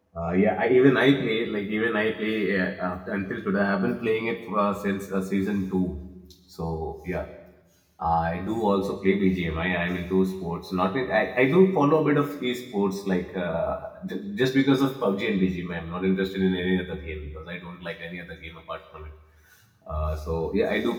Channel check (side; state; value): both; identical; correlation 1.00